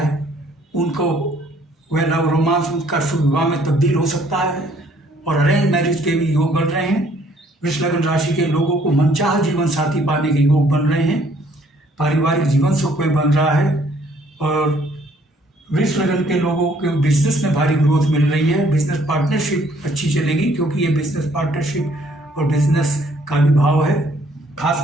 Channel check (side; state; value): both; normal; correlation 0.63